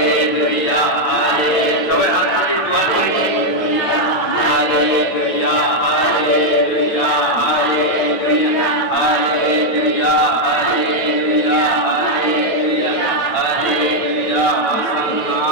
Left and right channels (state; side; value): late; right; 9.1 ms